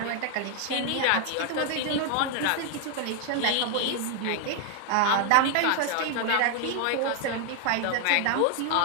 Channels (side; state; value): both; different; correlation 0.00